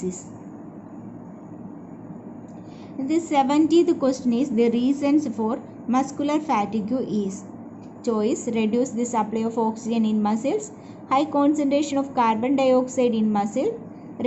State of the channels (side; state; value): both; identical; correlation 1.00